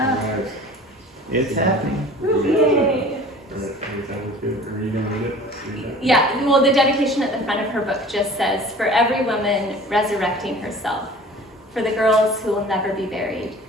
It's happening. Yay. Are you gonna read it? Yeah, well, the dedication at the front of her book just says, "For every woman resurrecting herself, for the girls who will never be buried,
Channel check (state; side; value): normal; both; correlation 0.44